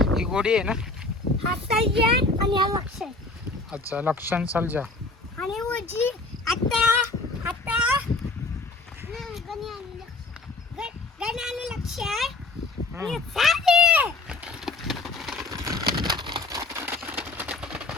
ही गोडी आहे ना? आणि हा लक्ष अच्छा लक्षण सलजा आणि उजी आता गणी लक्ष आहे आणि साधे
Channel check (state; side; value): quieter; right; 3.3 dB